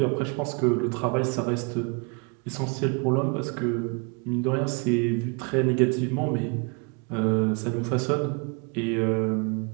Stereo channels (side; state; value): left; quieter; 32.9 dB